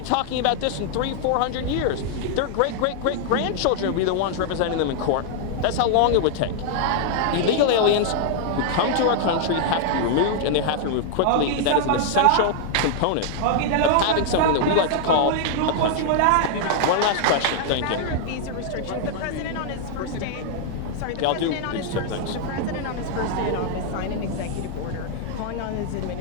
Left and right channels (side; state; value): both; different; correlation 0.00